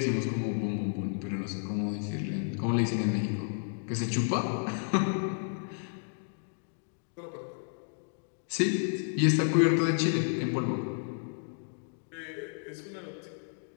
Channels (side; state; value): right; silent; digital silence